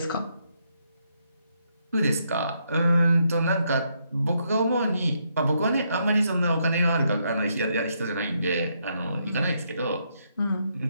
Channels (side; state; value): both; inverted; correlation -0.76